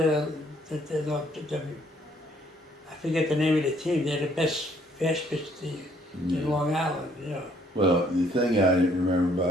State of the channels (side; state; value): both; normal; correlation 0.64